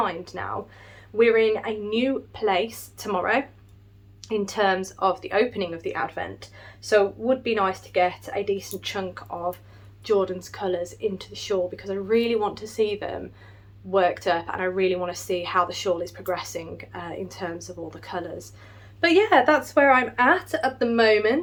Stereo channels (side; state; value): both; identical; correlation 1.00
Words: now. We're in a new place tomorrow in terms of the opening of the Advent, so it would be nice to get a decent chunk of Jordan's colours into the shawl, because I really want to see them worked up, and I really want to see how the shawl is progressing in terms of all the colours. But yeah, that's where I'm at the